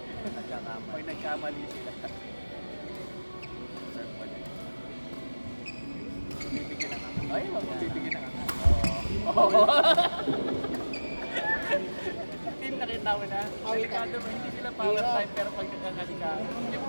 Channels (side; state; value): both; inverted; correlation -1.00